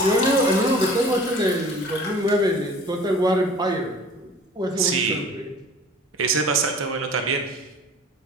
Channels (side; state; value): both; normal; correlation 0.45